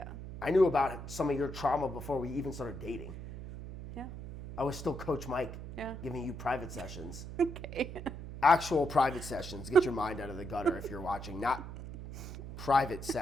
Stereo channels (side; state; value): right; noise; hum, 10 dB below the sound